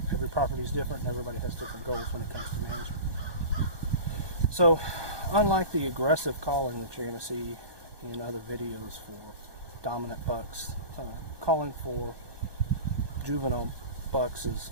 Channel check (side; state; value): left; late; 1.2 ms